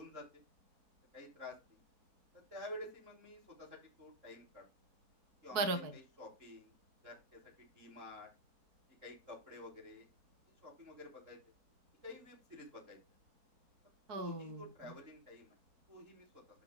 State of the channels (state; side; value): late; left; 4.5 ms